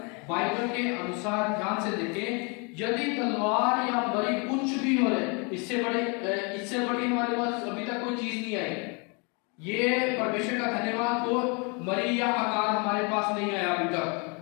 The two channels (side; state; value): right; quieter; 32.8 dB